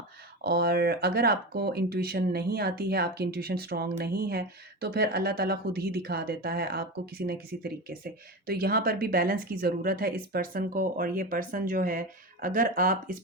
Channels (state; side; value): normal; both; correlation 0.23